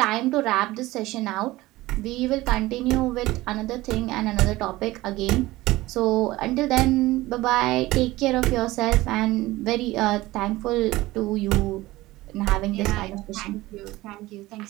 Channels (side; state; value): left; quieter; 18.4 dB